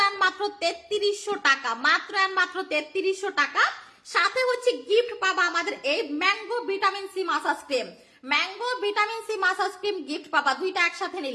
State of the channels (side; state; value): both; identical; correlation 1.00